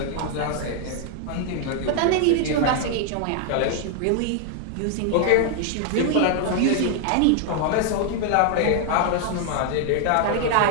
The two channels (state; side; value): different; both; correlation 0.00